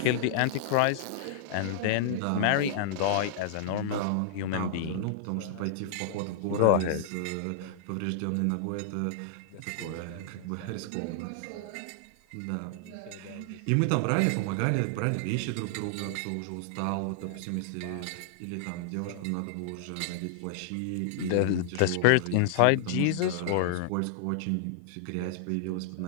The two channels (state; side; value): different; both; correlation -0.01